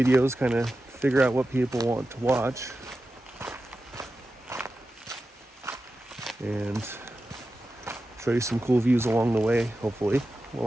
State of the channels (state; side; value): normal; both; correlation 0.92